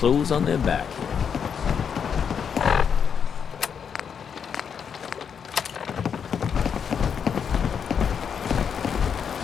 on their back.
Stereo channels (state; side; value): quieter; right; 7.2 dB